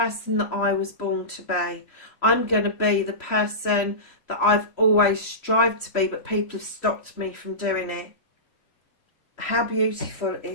that I was born to be. I'm going to be the person that I've always strived to be, but people have stopped me from doing it. How beautiful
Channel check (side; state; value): right; late; 3.1 ms